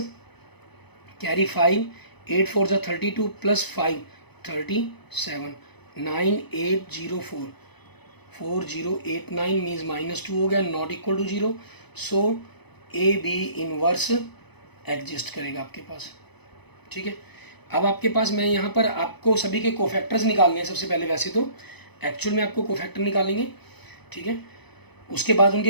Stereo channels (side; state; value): right; late; 0.99 ms